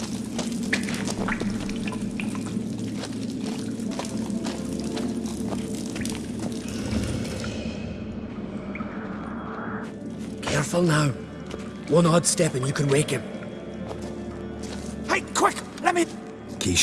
Careful now. One odd step and you can wake him. Hey, quick! Let me... Key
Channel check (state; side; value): identical; both; correlation 1.00